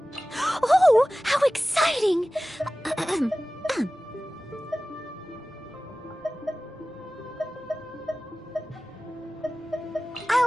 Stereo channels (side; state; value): both; normal; correlation 0.97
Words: Oh, how exciting!